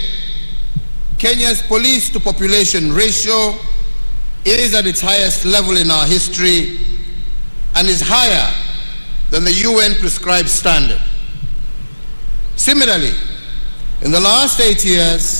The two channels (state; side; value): inverted; both; correlation -1.00